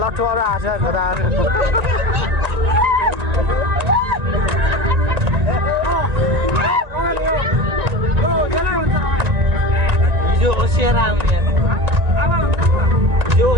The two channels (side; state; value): left; late; 1.9 ms